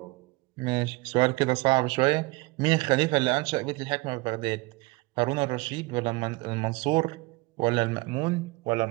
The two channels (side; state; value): left; quieter; 23.6 dB